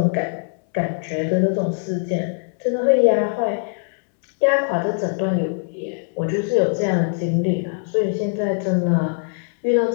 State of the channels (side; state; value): right; silent; 65 dB below the other